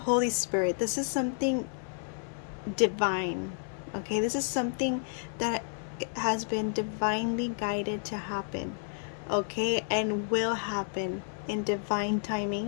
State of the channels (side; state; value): right; silent; 57 dB below the other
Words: Spirit. This is something divine. Okay? This is something that has been divinely guided to happen. Okay? And will happen in divine